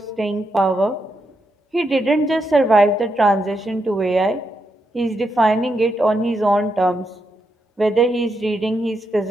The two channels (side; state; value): both; normal; correlation 0.82